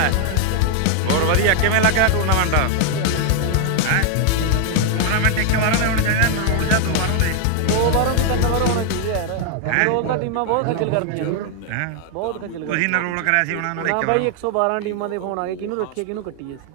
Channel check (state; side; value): different; both; correlation 0.00